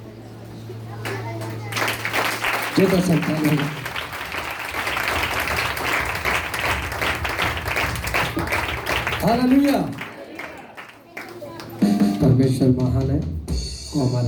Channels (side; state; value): both; identical; correlation 1.00